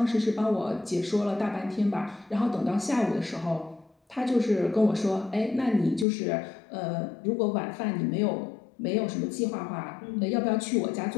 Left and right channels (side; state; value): right; drops out; at 6.1 s